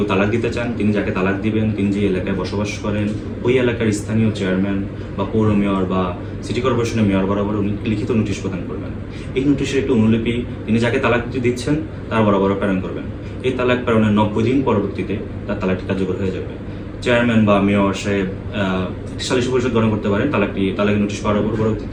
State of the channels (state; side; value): identical; both; correlation 1.00